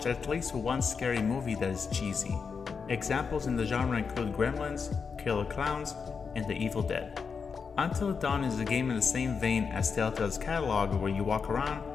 at least one scary movie that is cheesy. Examples in the genre include Gremlins, Killer Clowns, and The Evil Dead. Until Dawn is a game in the same vein as Telltale's catalog, where you walk around,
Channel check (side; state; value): right; quieter; 5.6 dB